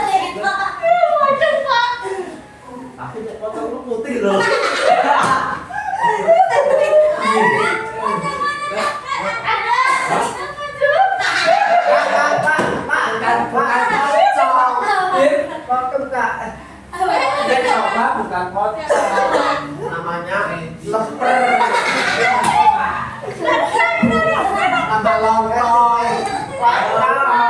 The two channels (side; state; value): both; identical; correlation 1.00